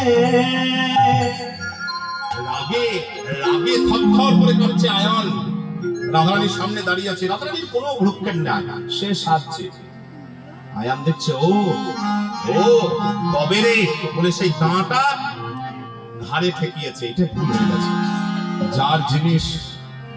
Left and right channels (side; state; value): both; identical; correlation 1.00